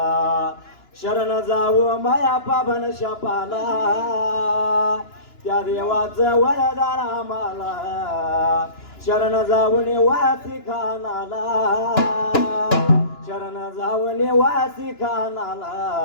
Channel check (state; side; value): late; right; 2.9 ms